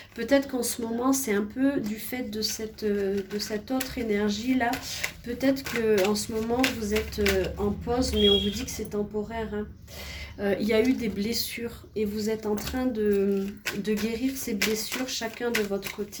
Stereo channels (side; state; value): both; identical; correlation 1.00